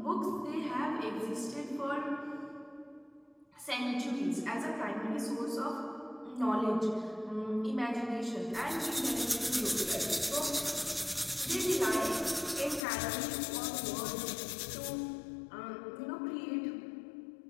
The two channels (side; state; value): right; drops out; at 12.9 s